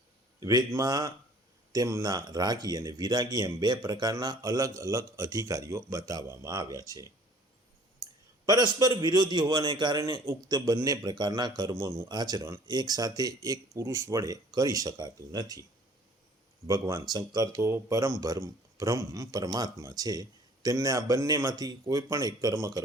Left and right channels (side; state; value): both; normal; correlation 0.53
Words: વેદમાં તેમના રાગી અને વિરાગી એમ બે પ્રકારના અલગ અલગ અધિકારીઓ બતાવવામાં આવ્યા છે. પરસ્પર વિરોધી હોવાને કારણે ઉક્ત બંને પ્રકારના કર્મોનું આચરણ એક સાથે એક પુરુષ વડે કરી શકાતું નથી. ભગવાન શંકર તો બ્રહ્મ પરમાત્મા છે, તેમને આ બંનેમાંથી કોઈ પણ એક કર્મ